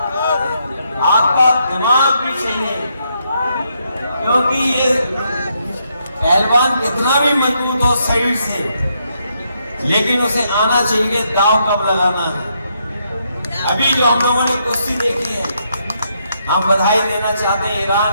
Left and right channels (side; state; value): both; inverted; correlation -0.77